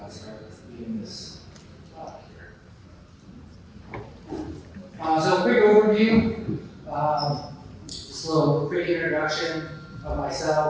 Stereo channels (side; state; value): both; identical; correlation 1.00